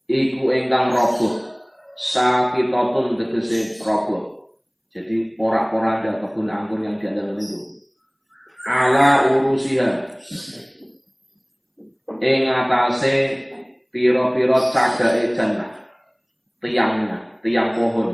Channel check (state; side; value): identical; both; correlation 1.00